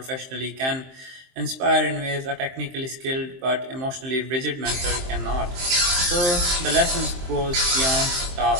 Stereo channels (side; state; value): left; late; 23 ms